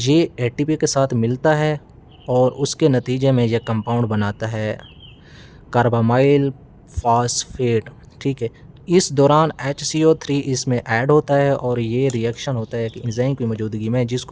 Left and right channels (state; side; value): identical; both; correlation 1.00